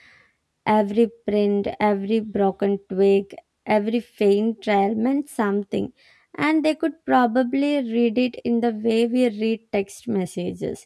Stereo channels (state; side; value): identical; both; correlation 1.00